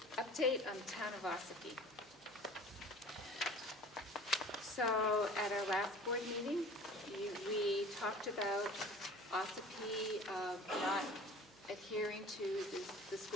update on the town of Ossipee. So at our last board meeting, we talked about Ossipee not adhering to the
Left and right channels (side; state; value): right; noise; hum, 28 dB below the sound